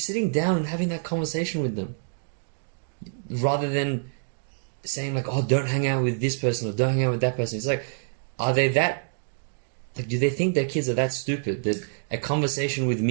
down and having that conversation with them, rather than saying like, oh, don't hang out with this person or don't hang out with that person. It's like, are they that, like, do they think their kids are that stupid that a conversation with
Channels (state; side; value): silent; left; digital silence